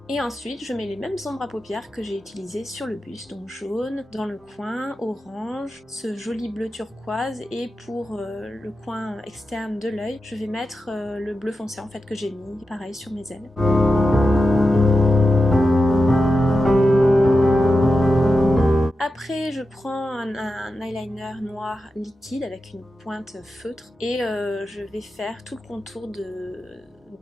Et ensuite, je mets les mêmes ombres à paupières que j'ai utilisées sur le buste, donc jaune, dans le coin, orange, ce joli bleu turquoise, et pour le coin externe de l'œil, je vais mettre le bleu foncé en fait que j'ai mis, pareil, sur mes ailes. Après, je prends un eyeliner noir liquide avec une pointe feutre et je vais faire tout le contour de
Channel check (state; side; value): normal; both; correlation 0.90